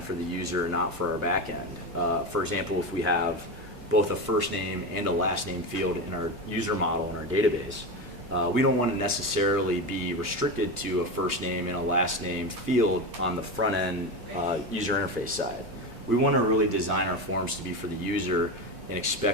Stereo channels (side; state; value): both; normal; correlation 0.20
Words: for the user, not for our back end. For example, if we have both a first name and a last name field in our user model in our database, we don't want to necessarily be restricted to a first name and a last name field on the front end user interface side. We want to really design our forms to be for the user and